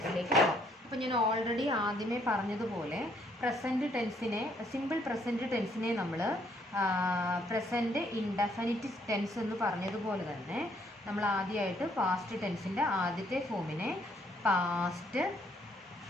പോകാം. അപ്പോൾ ഞാൻ ഓൾറെഡി ആദ്യമേ പറഞ്ഞതുപോലെ സിമ്പിൾ പ്രസൻറ്റ് ടെൻസിനെ നമ്മൾ പ്രസൻറ്റ് ഇൻഡെഫിനിറ്റ് ടെൻസ് എന്ന് പറഞ്ഞതുപോലെ തന്നെ നമ്മൾ ആദ്യമായിട്ട് പാസ്റ്റ് ടെൻസിൻ്റെ ആദ്യത്തെ ഫോമിനെ പാസ്റ്റ്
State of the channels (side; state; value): both; normal; correlation 0.68